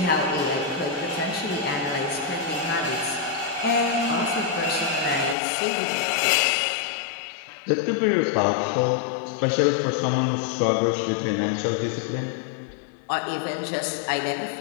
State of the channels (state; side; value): drops out; right; at 5.4 s